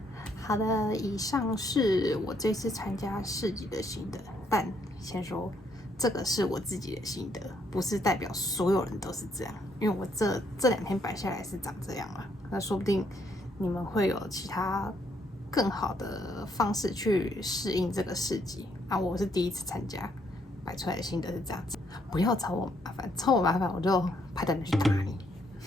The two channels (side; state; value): both; normal; correlation 0.72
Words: 好的，以上是我这次参加市集的心得，但先说这个是我自己的心得，不是代表所有人都是这样。因为我这2天摆下来是长这样啊，那说不定你们会有其他更好的方式去适应这个市集啊。我是第一次参加，摆出来的心得是这样子。不要找我麻烦，找我麻烦我就派人去打你。